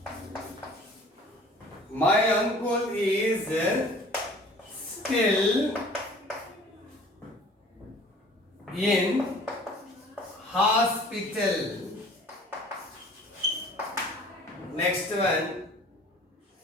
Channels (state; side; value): normal; both; correlation 0.49